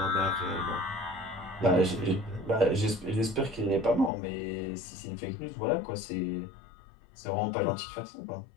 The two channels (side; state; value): right; drops out; at 4.1 s